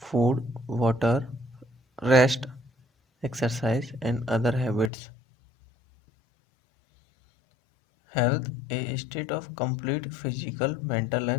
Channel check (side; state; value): right; drops out; at 4.9 s